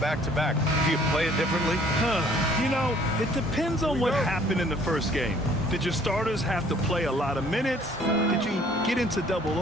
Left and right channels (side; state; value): both; normal; correlation 0.57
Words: do you play it differently? You know, it depends on what happened in the first game. Did your starters have to play a lot of minutes? Did you get into double